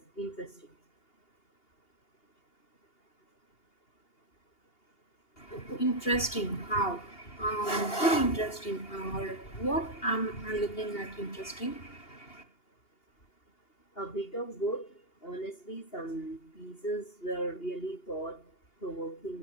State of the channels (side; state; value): right; late; 2.8 ms